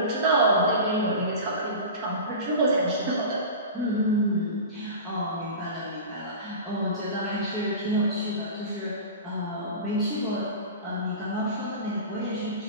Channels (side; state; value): both; inverted; correlation -0.31